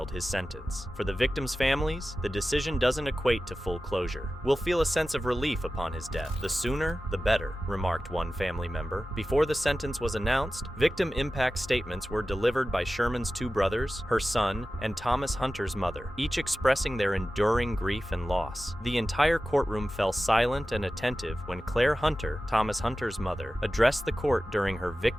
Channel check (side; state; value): both; normal; correlation 0.95